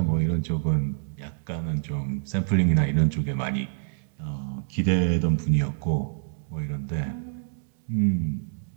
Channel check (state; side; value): silent; left; digital silence